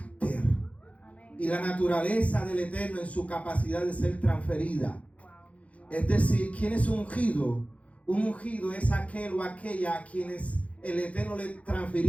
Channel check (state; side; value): late; right; 0.065 ms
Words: y la naturaleza del Eterno en su capacidad de ser transferida. Es decir, ¿quién es ungido? Un ungido es aquel o aquella a quienes el Eterno le